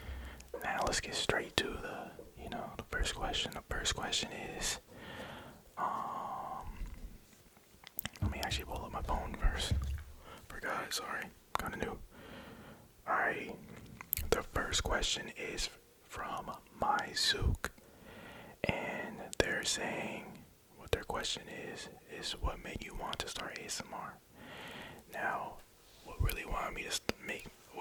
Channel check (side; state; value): both; identical; correlation 1.00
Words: Now let's get straight to the first question. The first question is, let me actually pull up my phone first. Forgot, sorry, kinda new. Alright, the first question is from Myuk, and they're saying, what their question is what made you want to start ASMR? Now, what really